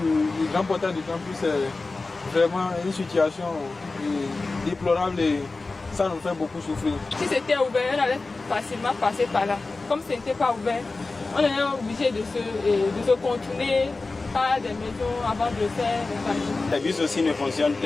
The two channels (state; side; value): quieter; right; 3.6 dB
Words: grand portail du campus est vraiment une situation déplorable et ça nous fait beaucoup souffrir. Si c'était ouvert, on allait facilement passer par là. Comme ce n'était pas ouvert, on est obligé de se contourner par des maisons avant de faire le Les bus aussi ne fonctionnent.